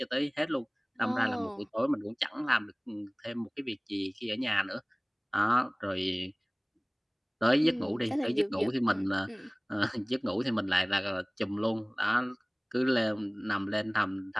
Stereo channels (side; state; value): both; identical; correlation 1.00